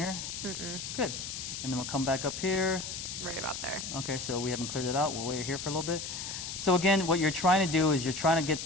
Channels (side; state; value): left; noise; hiss, 6 dB below the sound